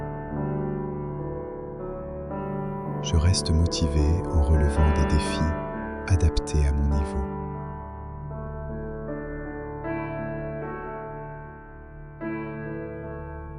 Je reste motivé en relevant des défis adaptés à mon niveau.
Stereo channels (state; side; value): identical; both; correlation 1.00